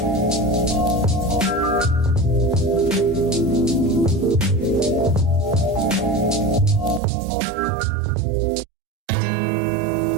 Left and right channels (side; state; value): left; drops out; at 7.0 s